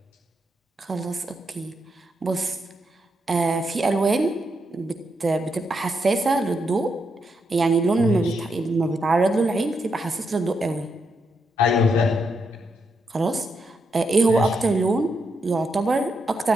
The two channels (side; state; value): both; normal; correlation 0.81